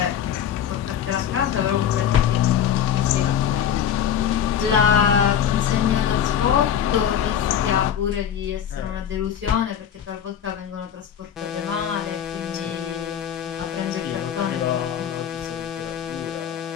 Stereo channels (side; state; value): right; quieter; 9.2 dB